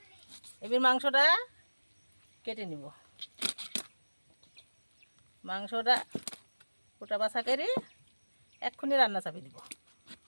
এবার মাংসটা কেটে নিব। মাংসটা কোটা বাছা করে এক্ষুনি রান্না চাপিয়ে দিব।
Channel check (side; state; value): both; inverted; correlation -1.00